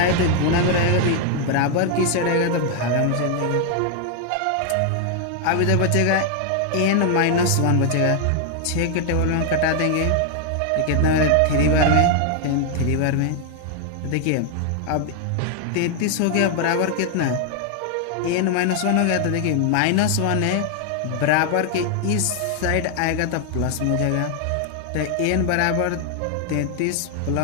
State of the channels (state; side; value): different; both; correlation 0.00